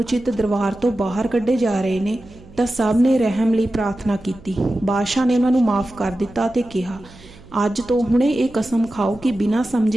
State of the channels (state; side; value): noise; right; hum, 22 dB below the sound